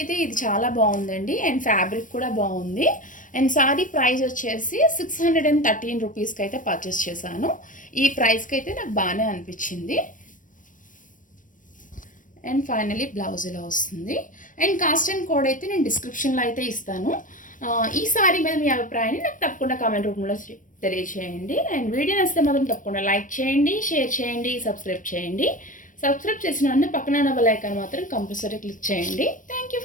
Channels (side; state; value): right; late; 0.38 ms